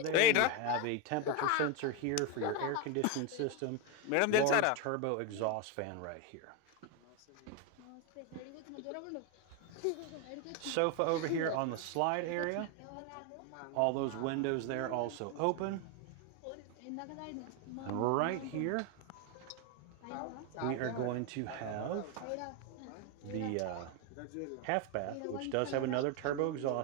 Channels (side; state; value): both; different; correlation 0.02